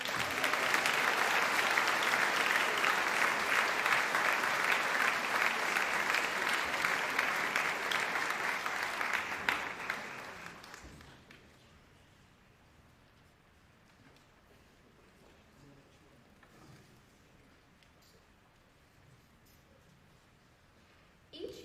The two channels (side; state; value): both; identical; correlation 1.00